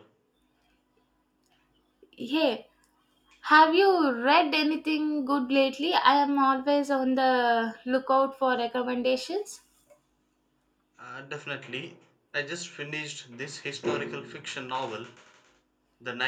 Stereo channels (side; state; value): both; identical; correlation 1.00